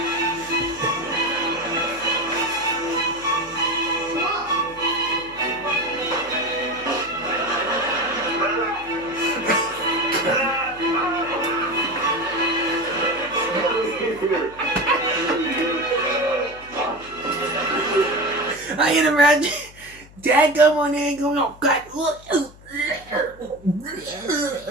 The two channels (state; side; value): noise; left; hum, 22 dB below the sound